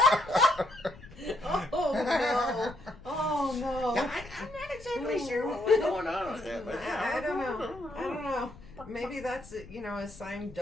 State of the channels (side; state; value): left; noise; rumble, 19 dB below the sound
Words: Oh, no. I'm not exactly sure what was going on with that. But I don't know. Maybe that's, a sign,